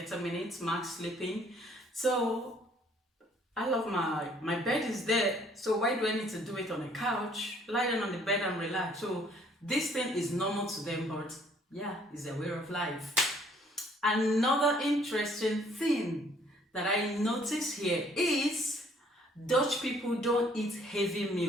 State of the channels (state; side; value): normal; both; correlation 0.62